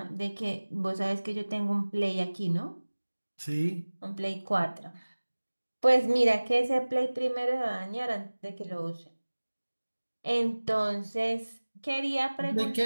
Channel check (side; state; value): both; inverted; correlation -1.00